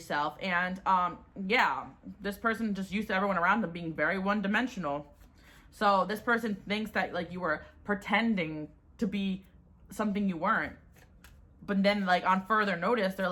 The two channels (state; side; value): identical; both; correlation 1.00